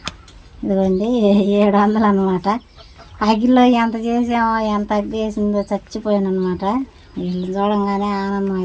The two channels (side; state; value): both; identical; correlation 1.00